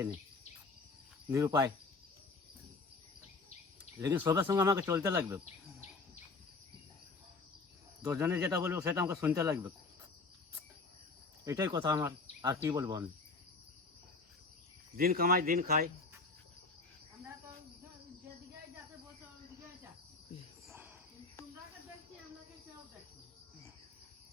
নেই, নিরুপায়। লেকিন সবের সঙ্গে আমাকে চলতে লাগবে, 10 জনে যেটা বলবো সেটা আমাকে শুনতে লাগবে, এটাই কথা আমার। আর কি বলবো আমি, দিন কামাই দিন খাই।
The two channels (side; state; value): right; quieter; 3.9 dB